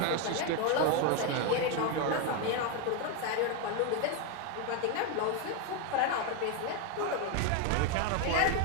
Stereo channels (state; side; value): different; both; correlation 0.02